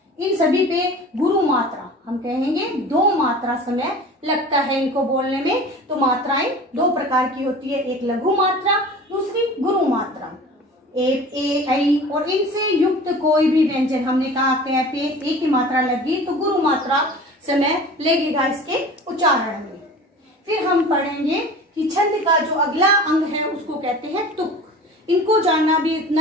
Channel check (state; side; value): normal; both; correlation 0.40